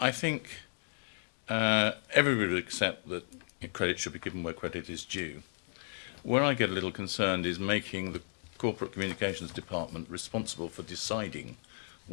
think everybody would accept that credit should be given where credit is due. Where I get a little concerned is making the Corporate Communications Department responsible for deciding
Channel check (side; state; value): right; silent; 55 dB below the other